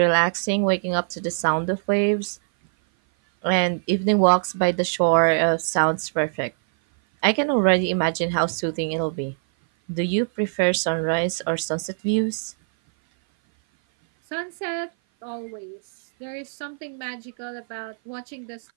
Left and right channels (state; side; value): silent; left; 56 dB below the other